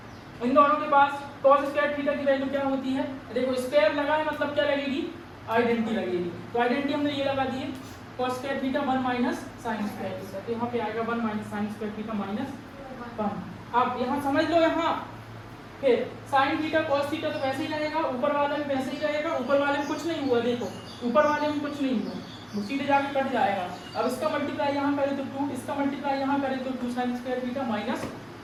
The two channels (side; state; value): both; identical; correlation 1.00